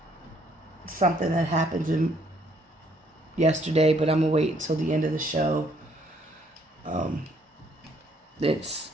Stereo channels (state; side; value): normal; both; correlation 0.66